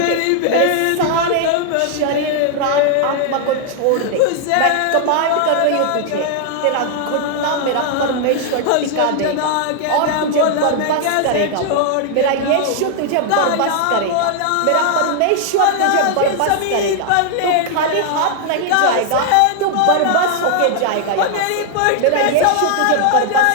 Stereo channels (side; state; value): both; different; correlation 0.00